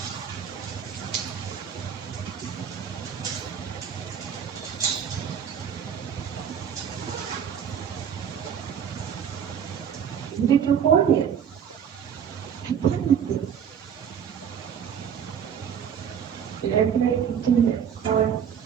Did you hold it? Let me do it.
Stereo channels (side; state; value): left; quieter; 8.1 dB